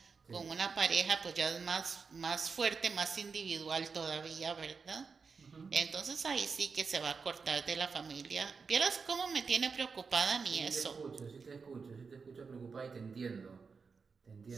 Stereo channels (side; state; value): left; quieter; 5.2 dB